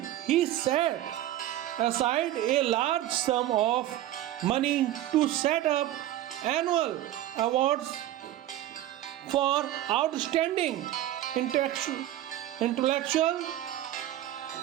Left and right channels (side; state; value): left; quieter; 13.5 dB